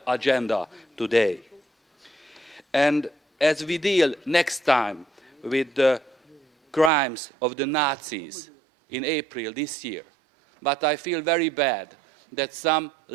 agenda today. And as we deal next time with the crimes of the Nazis in April this year, but I feel very bad that some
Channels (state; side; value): drops out; left; at 6.9 s